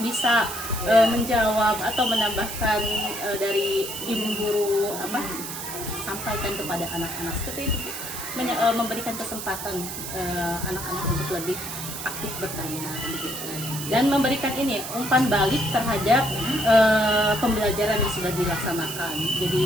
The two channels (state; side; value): noise; right; hiss, 7 dB below the sound